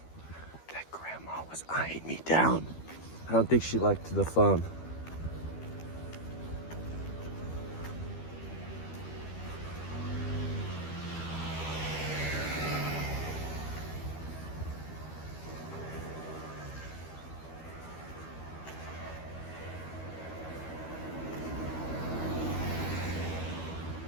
That grandma was eyeing me down. I don't think she liked the phone.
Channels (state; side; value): late; right; 12 ms